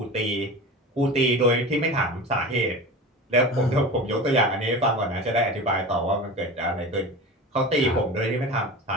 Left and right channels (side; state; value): both; normal; correlation 0.31